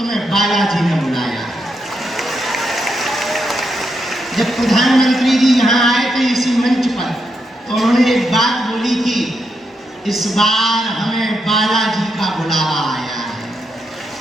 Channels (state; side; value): normal; both; correlation 0.81